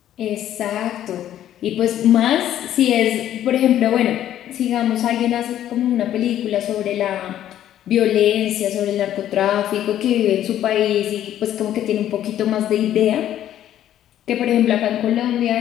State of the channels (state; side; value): quieter; right; 11.6 dB